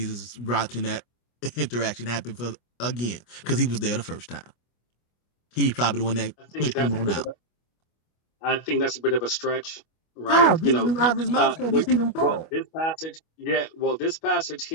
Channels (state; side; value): late; right; 25 ms